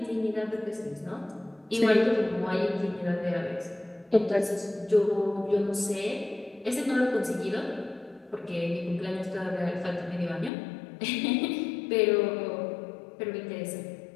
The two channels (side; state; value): right; drops out; at 10.5 s